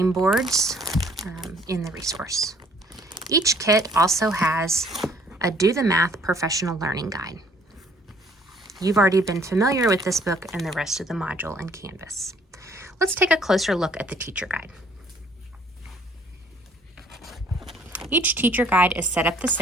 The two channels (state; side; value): normal; both; correlation 0.59